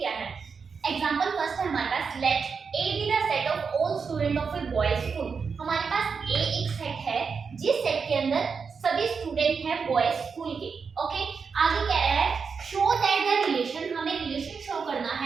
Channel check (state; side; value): quieter; left; 5.6 dB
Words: है। एग्जांपल फर्स्ट है हमारे पास, let A B the set of all student of a boys school. हमारे पास ए एक सेट है जिस सेट के अंदर सभी स्टूडेंट हैं बॉयज स्कूल के। ओके, आगे कह रहा है शो दैट द रिलेशन, हमें रिलेशन शो करना